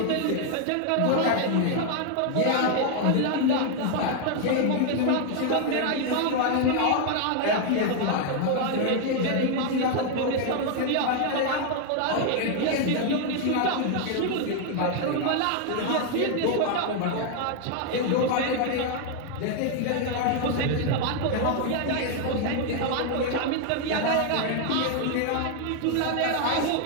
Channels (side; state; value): both; different; correlation 0.00